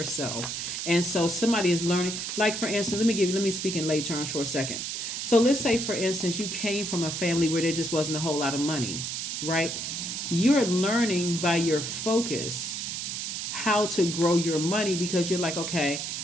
self. And so somebody is learning, like for instance, let me speak in lay terms for a second. So let's say, for instance, you came from a family where there just wasn't a whole lot of money, right? You're learning by your focus how to grow your money, because you're like, okay,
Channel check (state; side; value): noise; right; hiss, 4 dB below the sound